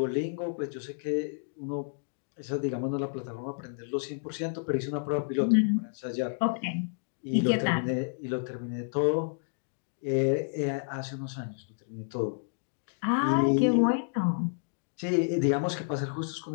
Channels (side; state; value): right; silent; digital silence